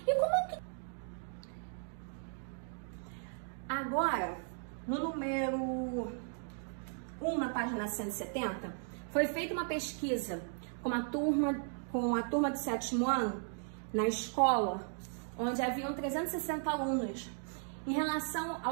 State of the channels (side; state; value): left; silent; 54 dB below the other